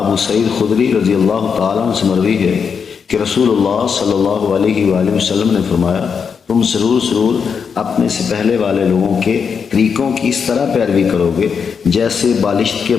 سعید خدری رضی اللہ تعالیٰ عنہ سے مروی ہے کہ رسول اللہ صلی اللہ علیہ وآلہ وسلم نے فرمایا، تم ضرور اپنے سے پہلے والے لوگوں کے طریقوں کی اس طرح پیروی کرو گے جیسے بالشت کے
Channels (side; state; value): right; quieter; 6.3 dB